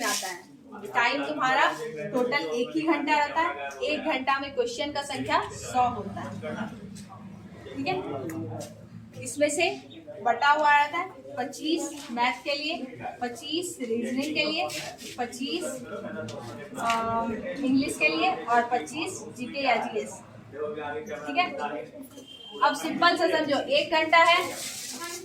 आता है। टाइम तुम्हारा टोटल 1 ही घंटा रहता है, 1 घंटा में क्वेश्चन का संख्या 100 होता है, ठीक है। इसमें से बटा हुआ रहता है 25 मैथ के लिए, 25 रीजनिंग के लिए, 25 इंग्लिश के लिए और 25 जीके या जीएस, ठीक है। अब सिंपल से समझो, 1 घंटा है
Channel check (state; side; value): identical; both; correlation 1.00